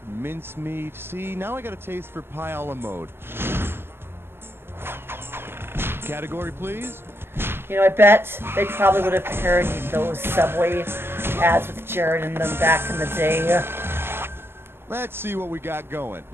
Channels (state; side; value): late; left; 0.11 ms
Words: mincemeat. See, now I got a taste for pie a la mode. Category, please. You know, I bet they probably would have parodied those Subway ads with Jared in them back in the day. Let's see what we got going.